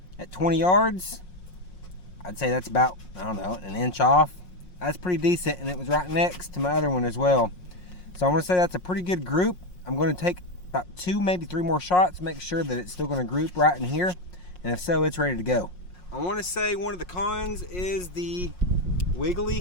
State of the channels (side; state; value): right; late; 5.5 ms